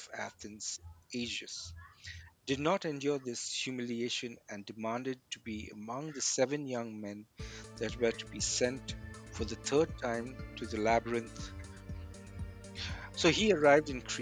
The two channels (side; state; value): both; identical; correlation 1.00